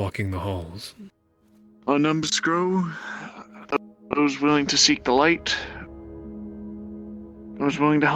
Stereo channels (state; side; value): identical; both; correlation 1.00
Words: the halls. Our numbers grow. Those willing to seek the light. Those willing to